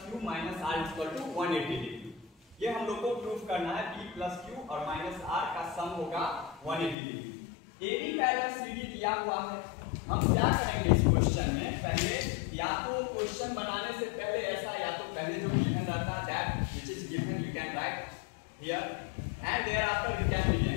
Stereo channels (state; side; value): drops out; right; at 7.0 s